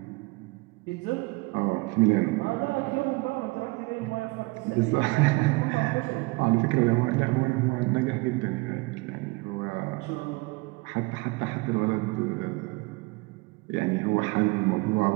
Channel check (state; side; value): quieter; left; 25.7 dB